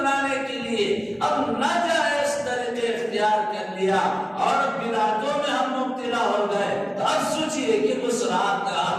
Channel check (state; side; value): identical; both; correlation 1.00